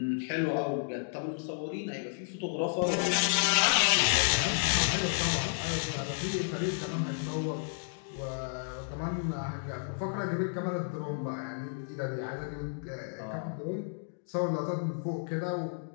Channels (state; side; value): silent; right; digital silence